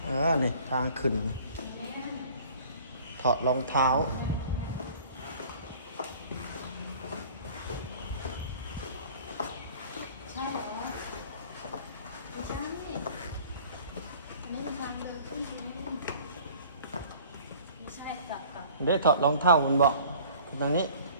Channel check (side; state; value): both; inverted; correlation -0.49